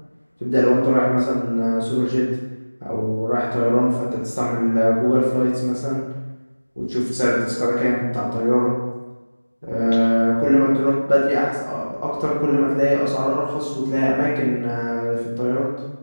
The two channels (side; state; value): both; inverted; correlation -1.00